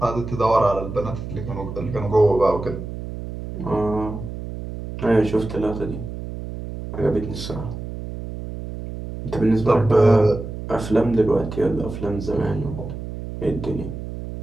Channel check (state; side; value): noise; right; hum, 8 dB below the sound